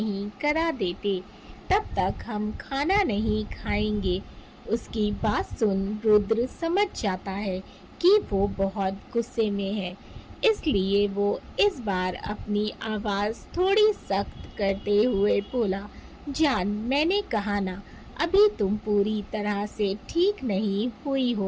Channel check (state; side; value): identical; both; correlation 1.00